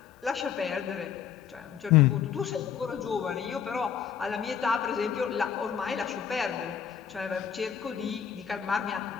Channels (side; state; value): right; quieter; 8.1 dB